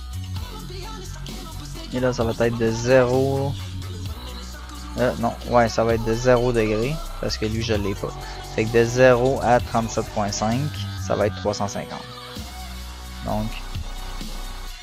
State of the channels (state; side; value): identical; both; correlation 1.00